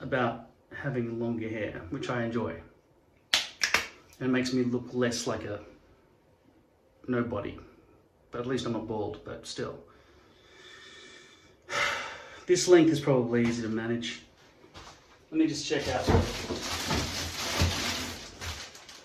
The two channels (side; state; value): both; identical; correlation 1.00